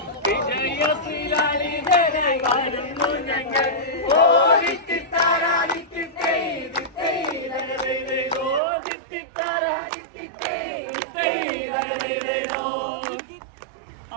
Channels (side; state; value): left; drops out; at 8.6 s